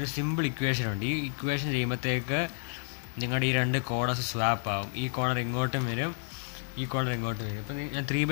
സിമ്പിൾ ഇക്വേഷൻ ഉണ്ട്. ഈ ഇക്വേഷൻ ചെയ്യുമ്പോഴത്തേക്ക് നിങ്ങളുടെ ഈ 2 കോർണേഴ്സ് സ്വാപ്പ് ആവും. ഈ കോർണർ ഇങ്ങോട്ടും വരും, ഈ കോർണർ ഇങ്ങോട്ടും വരും. അപ്പോൾ ഞാൻ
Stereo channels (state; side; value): silent; right; digital silence